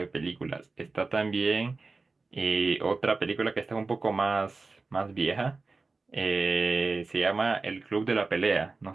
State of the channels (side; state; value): left; quieter; 3.8 dB